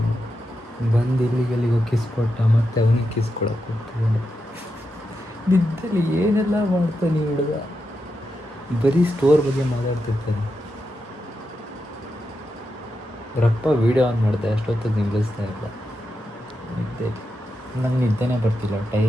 ಬಂದು ಇಲ್ಲಿಗೆಲ್ಲಿಗೋ kiss ಕೊಟ್ಟ ಮತ್ತೆ ಅವನಿಗೆ ಕಿಸ್ ಕೊಡೋಕೆ ಹೋಗ್ತಿದ್ದಾನೆ. ನಿದ್ದಲ್ಲಿ ಏನೆಲ್ಲ ಮಾಡ್ತಾನೆ ಹುಡುಗ, ಬರೀ ಸ್ಟೋರ್ ಬಗ್ಗೆ ಮಾತಾಡ್ತಿರ್ತಾನೆ. ಅವರಪ್ಪ ವೀಡಿಯೋ ಆನ್ ಮಾಡಿದೆ, ಅಷ್ಟೊತ್ತಿಗೆ ನಿಲ್ಲಿಸ್ತಾ ಇಲ್ಲ. ನಿದ್ದೆ ನಂಗೆ ನಿದ್ದೆನೇ ಬರ್ತಿಲ್ಲ.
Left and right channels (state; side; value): normal; both; correlation 0.87